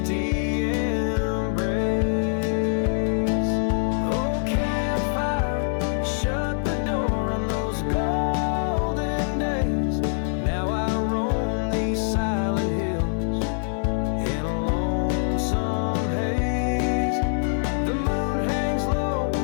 embrace. Oh, campfire, shut the door on those golden days. Now I roam these silent hills in a lonesome haze. The moon hangs low,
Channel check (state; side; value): silent; right; 57 dB below the other